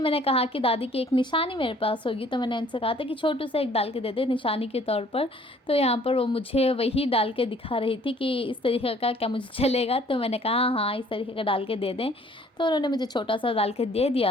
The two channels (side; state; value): both; normal; correlation 0.57